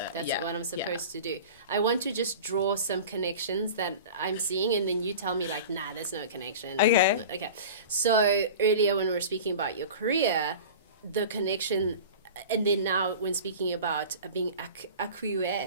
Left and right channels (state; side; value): inverted; both; correlation -0.36